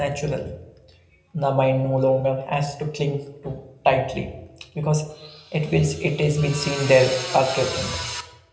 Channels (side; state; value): both; identical; correlation 1.00